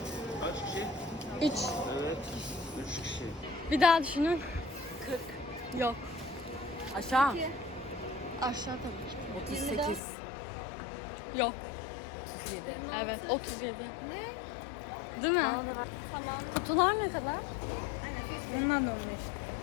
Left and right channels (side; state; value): right; drops out; at 10.0 s